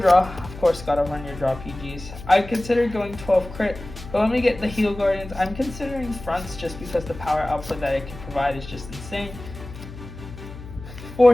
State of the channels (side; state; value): left; noise; hum, 14 dB below the sound